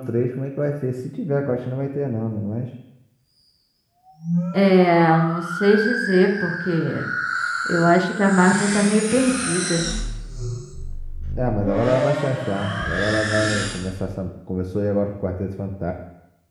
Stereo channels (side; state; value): both; identical; correlation 1.00